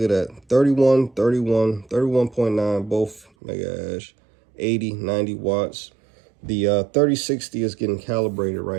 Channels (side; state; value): left; drops out; at 3.2 s